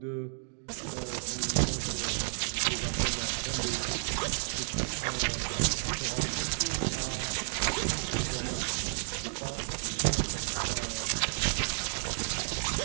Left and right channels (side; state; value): left; silent; digital silence